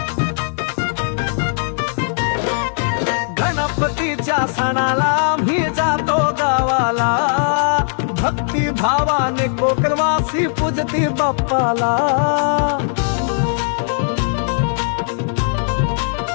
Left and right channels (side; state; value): right; silent; digital silence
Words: सणाला मी जातो गावाला, भक्ती भावाने कोकणवासी पूजती बाप्पाला।